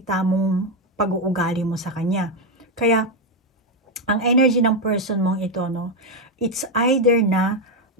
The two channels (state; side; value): normal; both; correlation 0.06